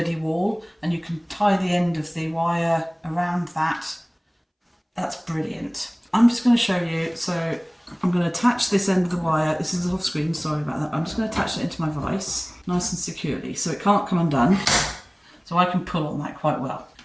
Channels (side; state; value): both; identical; correlation 1.00